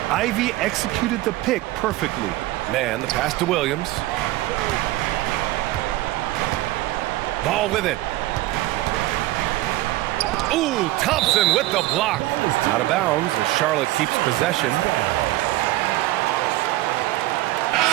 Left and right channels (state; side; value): quieter; left; 17.1 dB